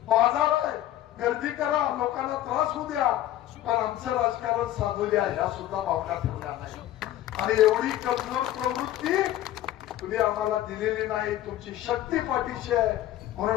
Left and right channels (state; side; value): quieter; right; 13.5 dB